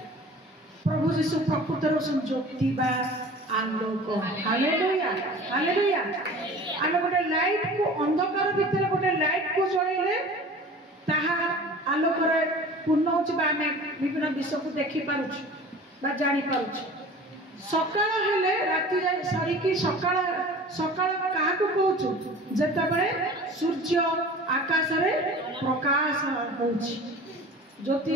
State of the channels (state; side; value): normal; both; correlation 0.42